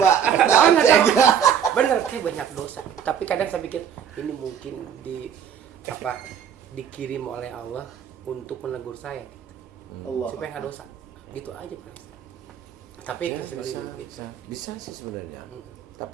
Bener, kayak banyak dosa. Tapi kadang saya pikir ini mungkin dikirim oleh Allah untuk menegur saya gitu. Allah. Supaya nggak dosa. Gitu aja, Pak. Tapi Bisa sih sebenarnya.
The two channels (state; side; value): quieter; left; 8.4 dB